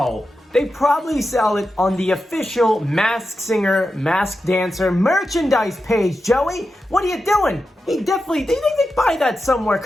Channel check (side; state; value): both; normal; correlation 0.90